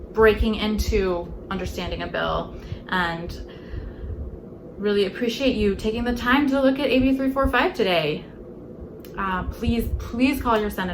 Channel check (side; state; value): both; identical; correlation 1.00